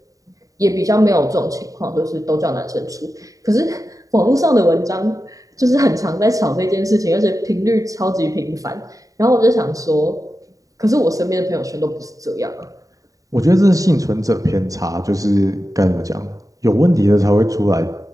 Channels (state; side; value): late; left; 0.16 ms